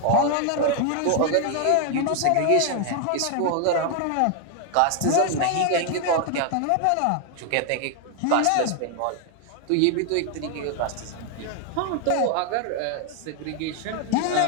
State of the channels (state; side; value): different; both; correlation 0.01